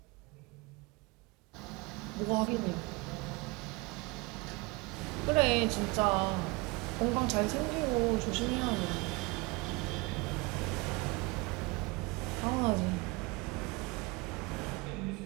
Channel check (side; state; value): left; quieter; 26.1 dB